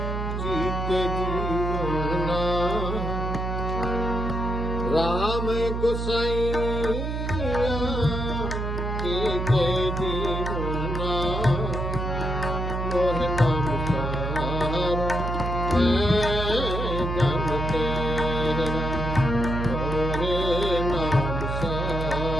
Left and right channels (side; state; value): right; noise; hum, 2 dB below the sound